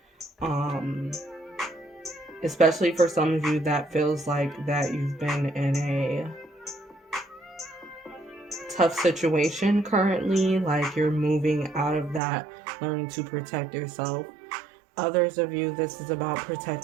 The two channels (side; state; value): left; drops out; at 12.2 s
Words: Especially for some of you that feels like that you've been in a tough situation currently, like you're moving out of that, learning to protect yourself. Others of you, this is about